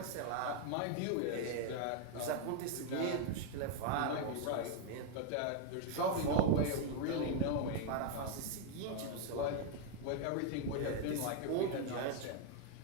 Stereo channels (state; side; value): different; both; correlation 0.00